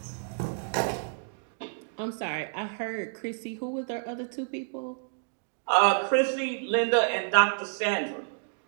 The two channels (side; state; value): left; silent; digital silence